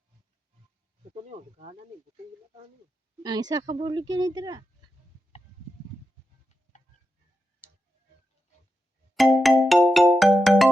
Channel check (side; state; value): both; normal; correlation 0.88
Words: Ito niyo, gana ni butong gina tani. Ang isa ka bulig yan dira.